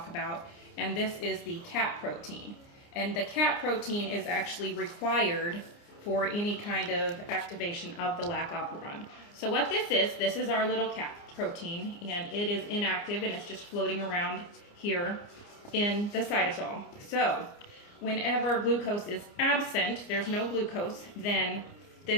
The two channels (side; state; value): right; late; 29 ms